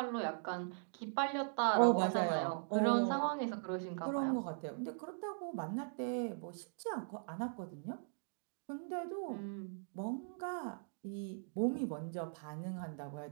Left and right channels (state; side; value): silent; left; digital silence